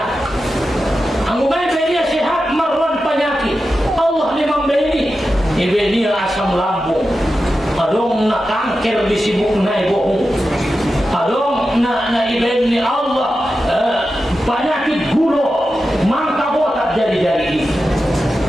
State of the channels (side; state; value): both; normal; correlation 0.91